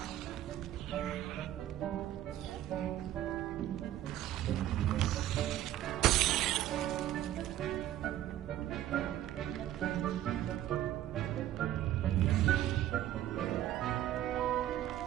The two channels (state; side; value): quieter; left; 12.9 dB